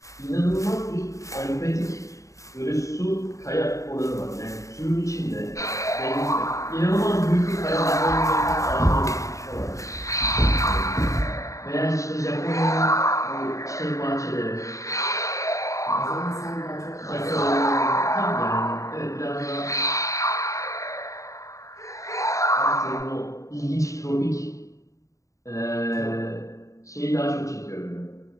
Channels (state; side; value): late; right; 0.16 ms